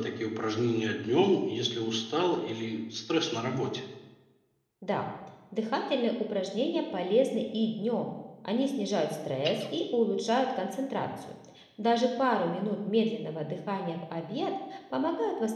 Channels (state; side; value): identical; both; correlation 1.00